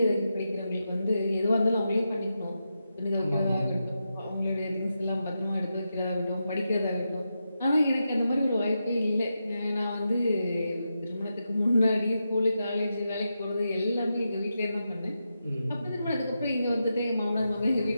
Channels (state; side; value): inverted; both; correlation -0.87